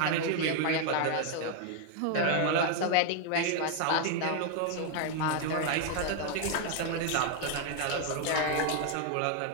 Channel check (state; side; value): different; both; correlation 0.01